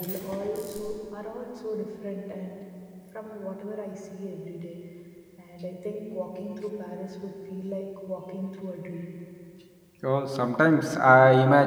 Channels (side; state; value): both; identical; correlation 1.00